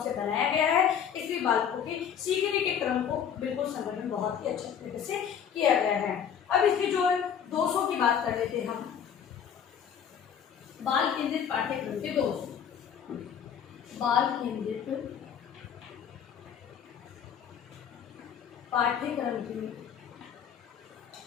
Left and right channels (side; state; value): right; quieter; 8.2 dB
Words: से बनाया गया है, इसलिए बालकों के सीखने के क्रम को बिल्कुल संगठन बहुत ही अच्छे तरीके से किया गया है। अब इसके जो दोषों की बात कर लेते हैं हम। बाल केंद्रित पाठ्यक्रम के दोष। बाल केंद्रित पाठ्यक्रम के